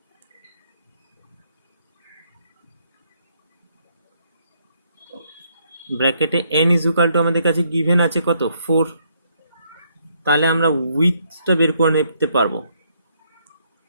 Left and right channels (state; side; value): inverted; both; correlation -0.72